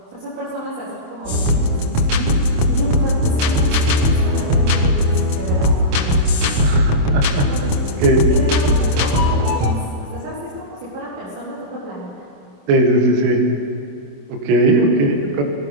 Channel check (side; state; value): left; late; 27 ms